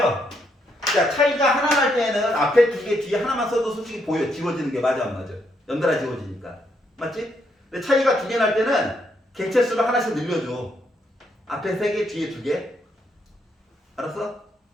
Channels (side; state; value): both; normal; correlation 0.76